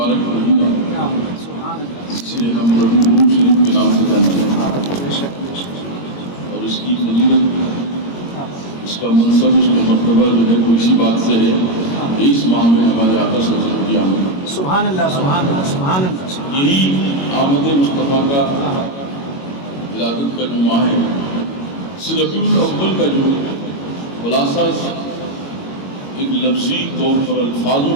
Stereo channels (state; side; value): late; right; 22 ms